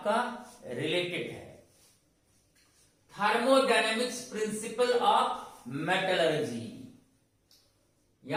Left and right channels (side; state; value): both; identical; correlation 1.00